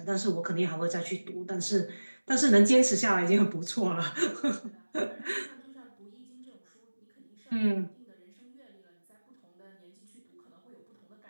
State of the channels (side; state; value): both; inverted; correlation -1.00